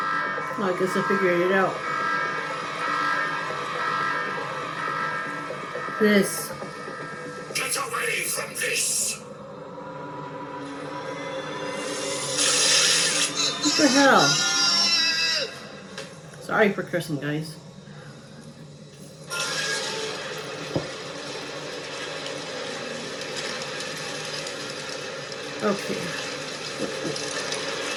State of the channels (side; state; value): both; identical; correlation 1.00